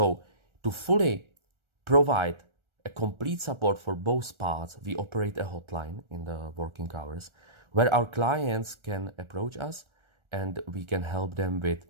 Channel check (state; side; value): late; left; 1.4 ms